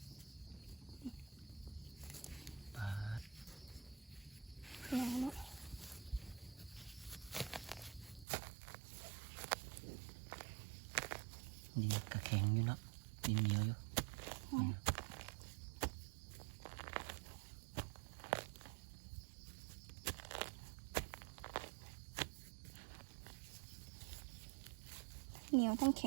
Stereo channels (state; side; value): drops out; left; at 8.2 s